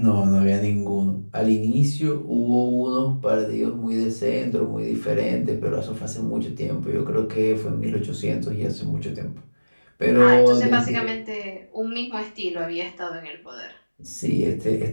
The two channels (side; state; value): both; inverted; correlation -1.00